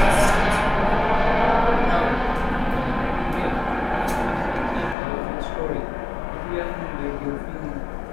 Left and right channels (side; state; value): right; drops out; at 5.0 s